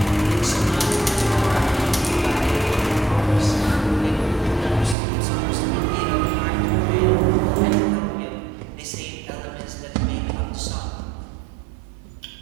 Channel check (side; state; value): left; drops out; at 5.0 s